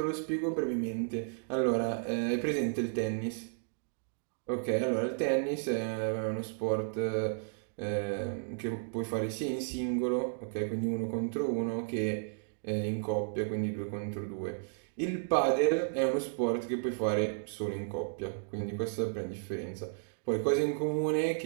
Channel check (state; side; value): silent; left; digital silence